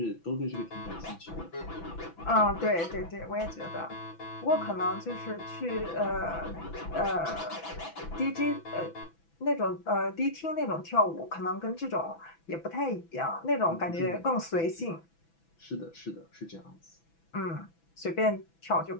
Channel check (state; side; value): late; right; 6.0 ms